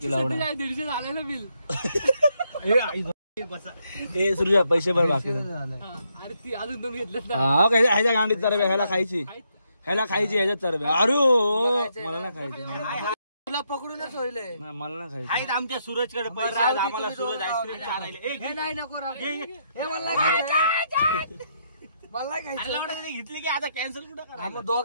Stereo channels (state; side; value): inverted; both; correlation -0.77